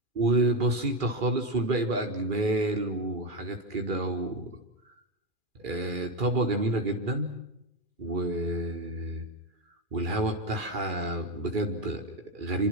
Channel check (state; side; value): late; left; 2.4 ms